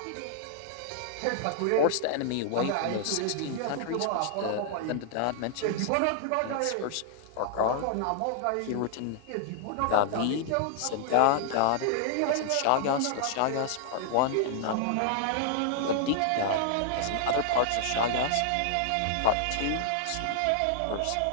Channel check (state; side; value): different; both; correlation -0.01